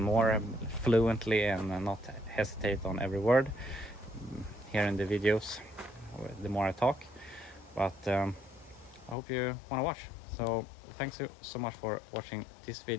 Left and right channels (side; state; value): right; drops out; at 9.2 s